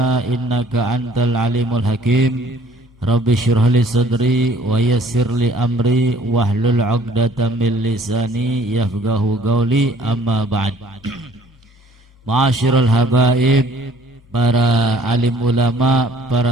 innaka antal alimul hakim. Rabbi shrah li sadri wa yassir li amri wahlul 'uqdatam min lisani yafqahu qawli amma ba'd. Ma'asyiral habaib, para alim ulama,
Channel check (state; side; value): normal; both; correlation 0.57